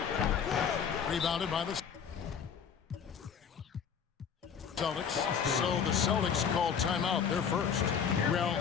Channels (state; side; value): quieter; right; 7.2 dB